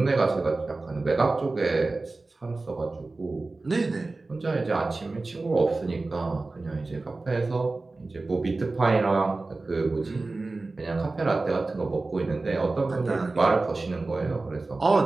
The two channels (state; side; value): quieter; left; 3.4 dB